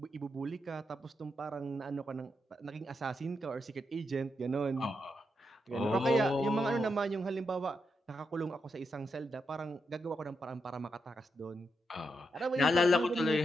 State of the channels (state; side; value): normal; both; correlation 0.84